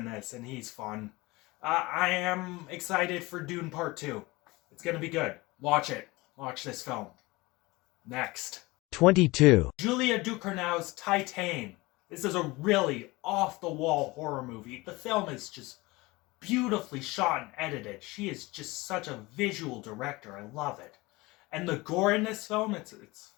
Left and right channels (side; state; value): right; quieter; 22.1 dB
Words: this, and he's fun. I am excited for Dune Part 2. It's gonna be good. Watch it. Watch this film. Next. 22. Julia Ducournau's Titane. This is a really off-the-wall horror movie. The film is just beautifully shot and edited. She is just such a visual director. I love it. And the gore in this film, it's